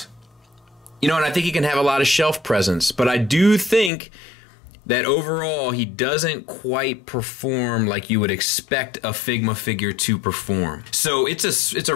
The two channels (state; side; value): drops out; right; at 3.9 s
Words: You know, and I think he can have a lot of shelf presence, but I do think that overall he doesn't quite perform like you would expect a Figma figure to perform. So it's a